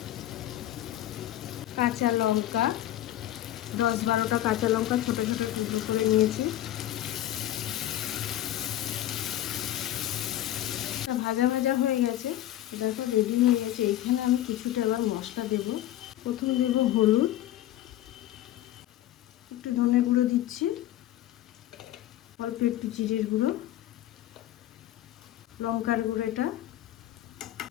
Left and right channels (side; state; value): right; quieter; 13.3 dB